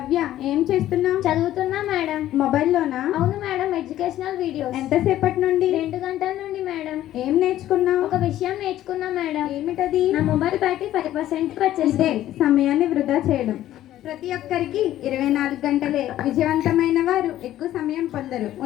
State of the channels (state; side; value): quieter; right; 13.2 dB